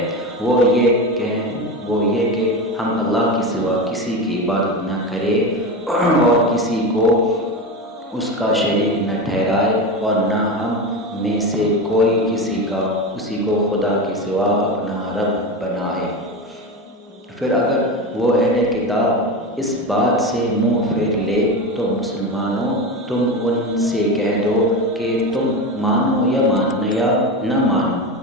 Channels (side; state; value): both; normal; correlation 0.21